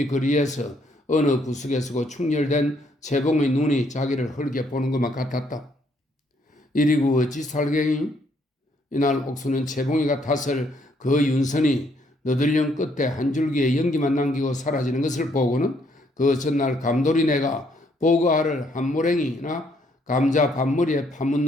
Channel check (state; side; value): normal; both; correlation 0.69